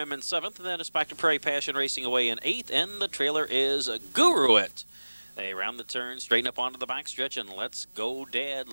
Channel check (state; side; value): inverted; both; correlation -1.00